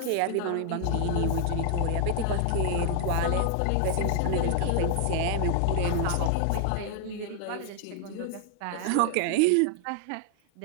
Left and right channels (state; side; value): different; both; correlation 0.00